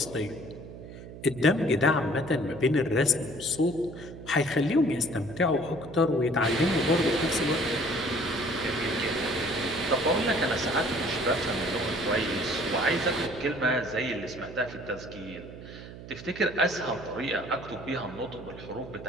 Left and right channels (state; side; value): noise; right; hum, 14 dB below the sound